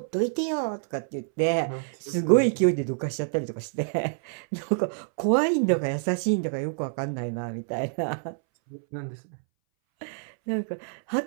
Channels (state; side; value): silent; left; 60 dB below the other